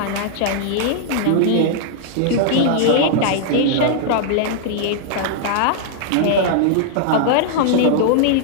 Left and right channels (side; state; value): both; different; correlation -0.01